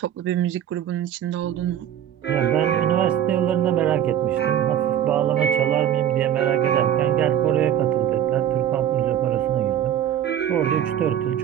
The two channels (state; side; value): quieter; left; 10.4 dB